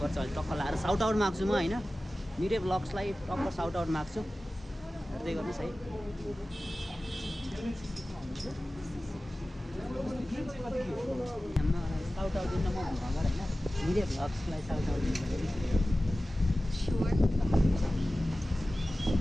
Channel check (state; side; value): normal; both; correlation 0.96